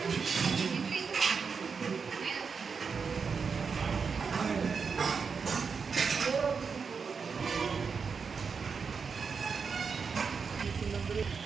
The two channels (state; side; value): quieter; left; 5.6 dB